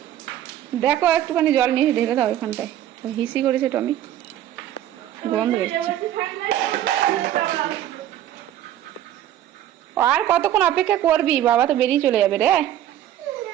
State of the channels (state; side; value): quieter; left; 12.1 dB